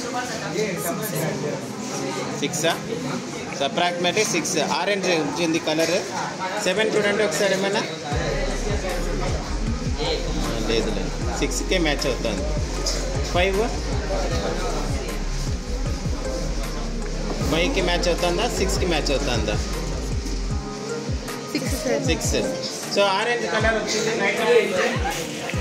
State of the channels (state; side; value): identical; both; correlation 1.00